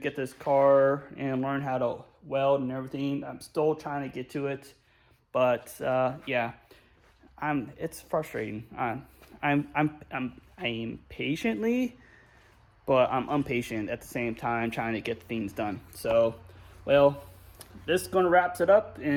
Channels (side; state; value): both; identical; correlation 1.00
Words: this car and learn how to weld and everything. I'm still trying to get to it, but yeah, it's frustrating. I'm patiently, but I'm impatient at the same time, trying to get things done. So, well, this is going to wrap it up,